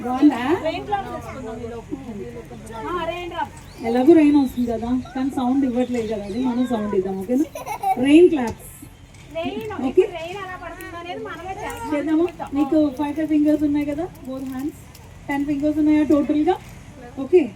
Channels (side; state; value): both; identical; correlation 1.00